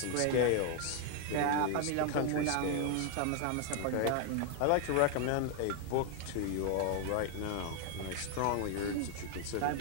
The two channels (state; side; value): different; both; correlation 0.00